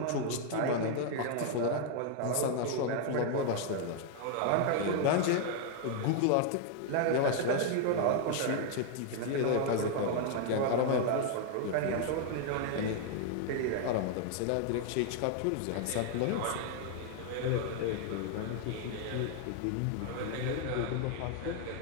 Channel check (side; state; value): both; different; correlation 0.00